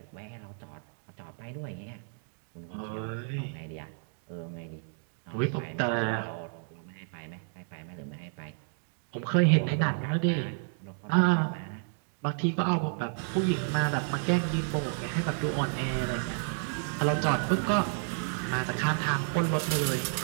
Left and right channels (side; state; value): left; silent; 57 dB below the other